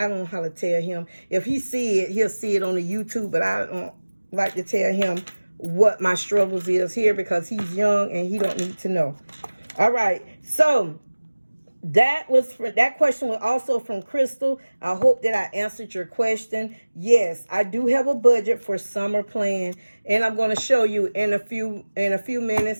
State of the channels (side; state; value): both; inverted; correlation -1.00